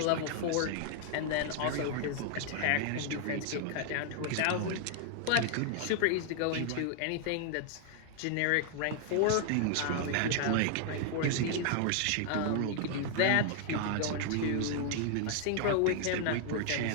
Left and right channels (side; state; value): both; different; correlation 0.00